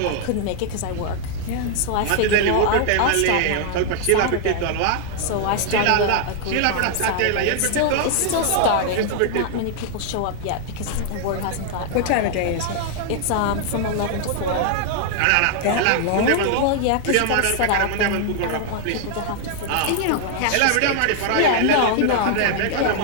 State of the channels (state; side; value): different; both; correlation 0.00